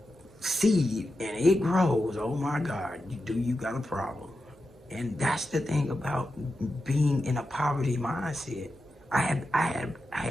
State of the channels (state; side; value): normal; both; correlation 0.90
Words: seed and it grows, oh my God, you got a problem. And that's the thing about being in a poverty mindset. I